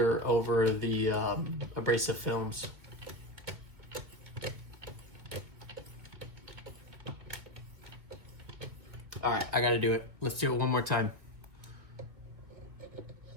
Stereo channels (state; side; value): late; left; 2.2 ms